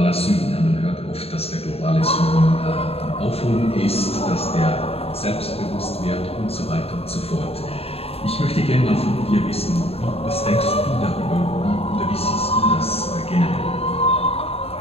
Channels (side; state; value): right; late; 0.29 ms